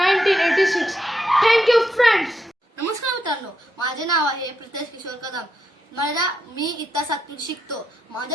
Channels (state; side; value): normal; both; correlation 0.82